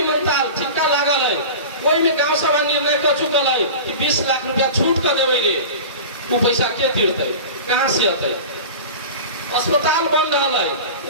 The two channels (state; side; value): inverted; both; correlation -0.33